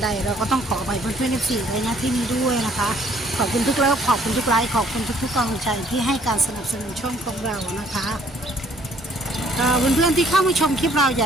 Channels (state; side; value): normal; both; correlation 0.62